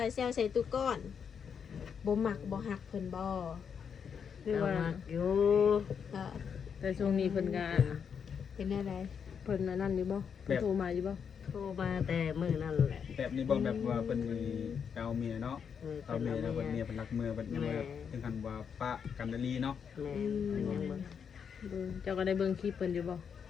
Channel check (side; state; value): right; quieter; 7.0 dB